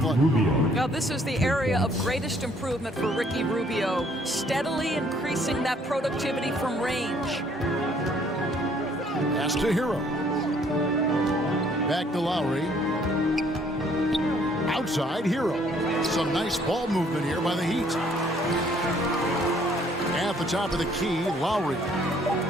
Now this is the area of greatest improvement for Ricky Rubio, steadily increasing that productivity from range. Pass to Hero. Back to Lowry. Outside Hero. Some nice ball movement here by the Heat. At the top of the key, Lowry.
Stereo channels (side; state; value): both; normal; correlation 0.63